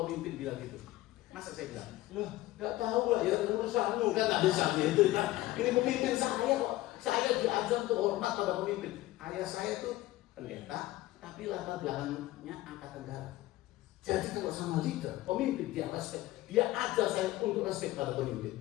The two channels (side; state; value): right; quieter; 17.0 dB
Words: pemimpin bilang gitu, Masa saya bilang, loh, nggak tahu lah ya urusanmu kan nggak bisa gitu kan. Ini pemimpin saya kok. Saya diajar untuk hormat pada pemimpin. Ayah saya tuh pendeta, tapi latar belakangnya angkatan darat. Jadi kalau sama leader, pemimpin dia respect, dia ajar saya untuk respect pada